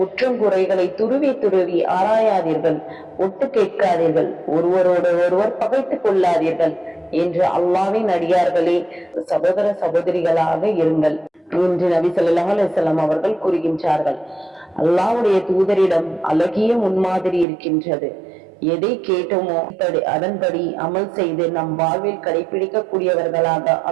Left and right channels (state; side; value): drops out; left; at 17.4 s